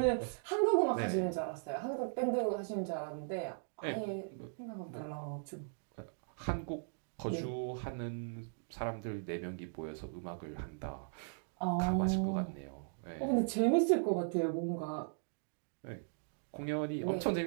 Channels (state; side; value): silent; left; digital silence